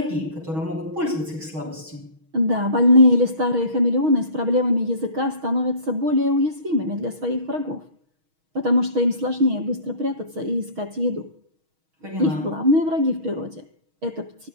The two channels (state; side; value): late; left; 6.3 ms